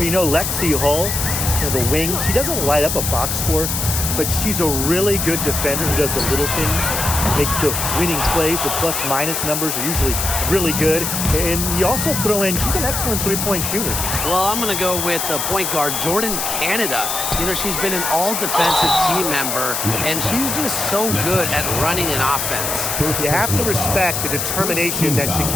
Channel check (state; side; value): noise; left; hiss, 1 dB below the sound